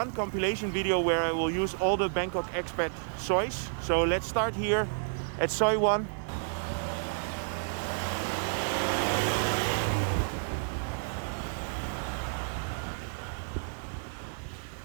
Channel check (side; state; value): left; silent; digital silence